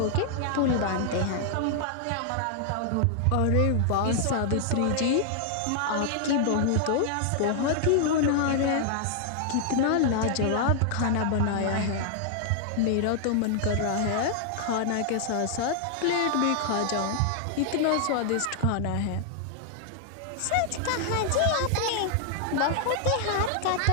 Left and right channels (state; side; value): different; both; correlation -0.01